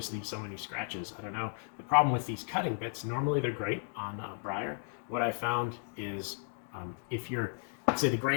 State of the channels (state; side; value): silent; right; 55 dB below the other